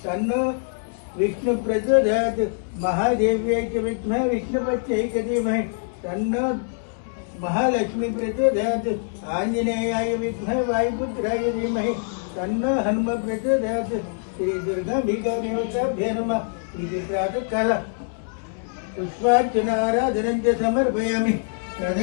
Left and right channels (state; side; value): silent; right; digital silence